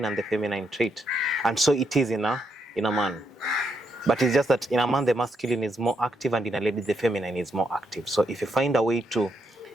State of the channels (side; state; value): both; normal; correlation 0.78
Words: and the feminine trait. And so it is in a man. But it's just that in a man, the masculine is more active, and in a lady, the feminine is more active. So if you find a way to